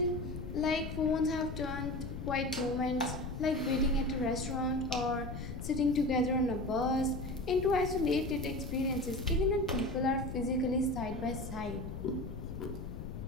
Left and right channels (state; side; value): noise; left; rumble, 7 dB below the sound